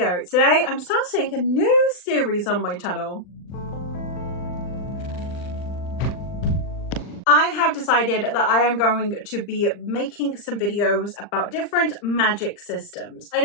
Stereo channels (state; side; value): late; right; 39 ms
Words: Today I'm starting a new series on my channel. I have decided that I am going to be making some videos about different magic systems. I